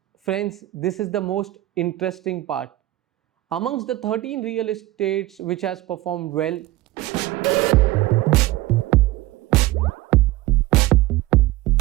friends, this is the most interesting part. Amongst the 13 real estates which has performed well,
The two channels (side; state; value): left; quieter; 16.9 dB